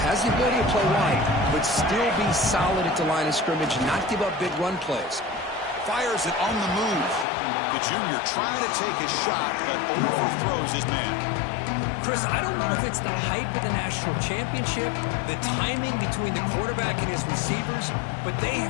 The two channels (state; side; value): drops out; right; at 7.2 s